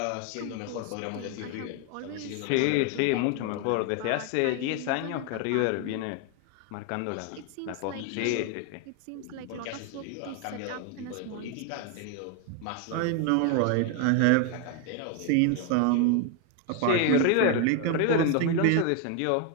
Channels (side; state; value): both; different; correlation 0.01